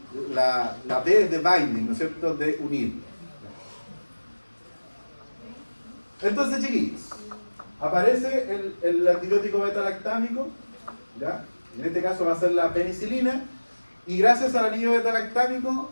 La B es de binding, ¿no es cierto? De unir. Entonces, chiquillos, aparece el antibiótico beta-lactámico, ¿ya? En este caso va a ser la penicilina, y gracias al anillo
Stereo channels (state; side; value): inverted; both; correlation -1.00